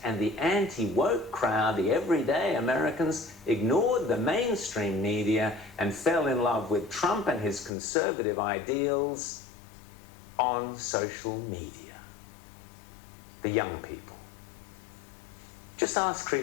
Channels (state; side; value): drops out; right; at 7.7 s